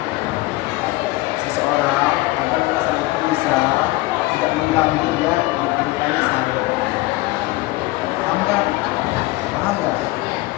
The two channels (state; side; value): quieter; right; 20.0 dB